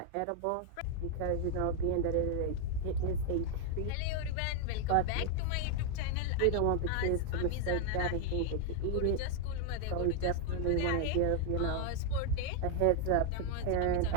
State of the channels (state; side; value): different; both; correlation 0.00